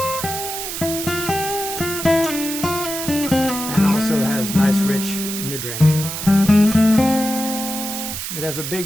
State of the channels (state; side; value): noise; right; hiss, 6 dB below the sound